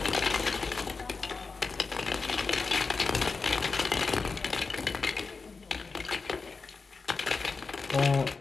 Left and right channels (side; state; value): right; quieter; 4.4 dB